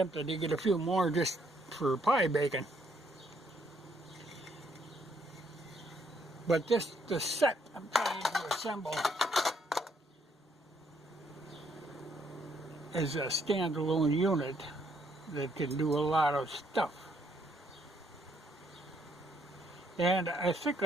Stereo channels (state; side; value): normal; both; correlation 0.70